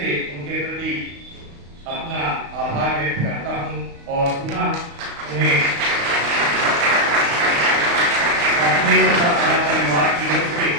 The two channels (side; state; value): left; late; 35 ms